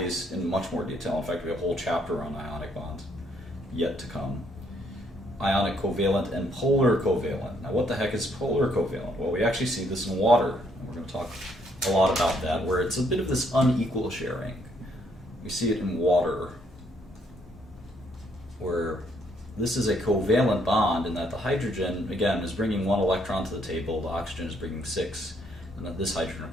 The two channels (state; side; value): normal; both; correlation 0.70